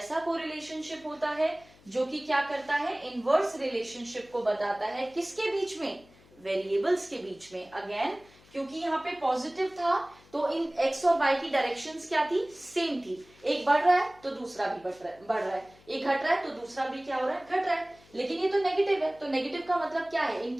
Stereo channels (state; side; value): noise; left; hum, 27 dB below the sound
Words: कोरिलेशनशिप होता है जो कि क्या करता है? इनवर्स रिलेशनशिप को बताता है. किसके बीच में? वेरिएबल्स के बीच में। अगेन क्योंकि यहाँ पे पॉजिटिव था तो इन एक्स और वाई की डायरेक्शंस क्या थी, सेम थी। एक बढ़ रहा है तो दूसरा भी बढ़ रहा है, एक घट रहा है तो दूसरा भी क्या हो रहा है, घट रहा है। लेकिन ये तो नेगेटिव है, तो नेगेटिव का मतलब क्या है,